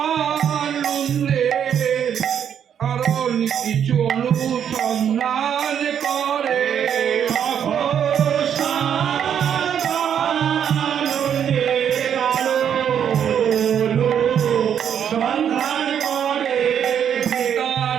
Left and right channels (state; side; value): quieter; left; 8.7 dB